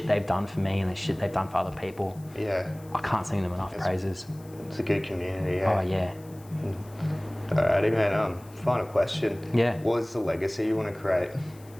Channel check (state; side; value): noise; left; hiss, 25 dB below the sound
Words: they've done for me and the shit they've done for other people. Yeah. I can't sing them enough praises. It's a good community, yeah. Oh, yeah. Alrighty, man. Final question. Yeah. What is the legacy you want to create?